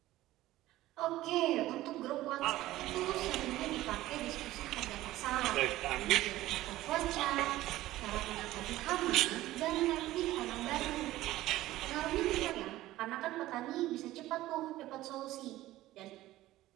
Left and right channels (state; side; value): quieter; left; 16.0 dB